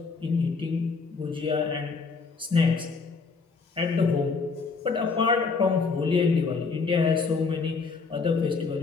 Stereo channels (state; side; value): quieter; right; 4.6 dB